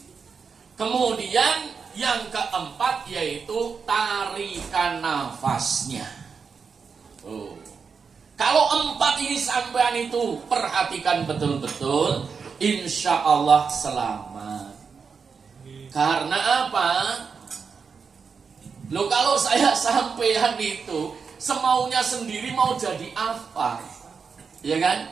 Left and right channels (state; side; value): quieter; left; 5.6 dB